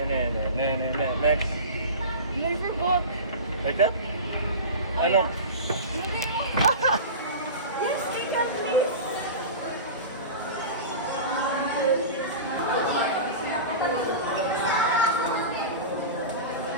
Next. I forgot. Like that? Ano? Yes, Kika, please.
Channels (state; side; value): inverted; both; correlation -0.30